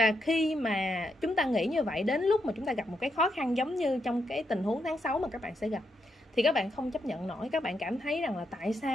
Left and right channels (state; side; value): normal; both; correlation 0.81